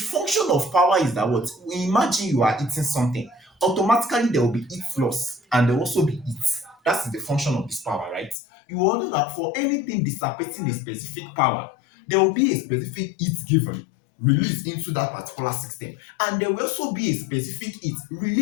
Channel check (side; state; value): right; drops out; at 8.3 s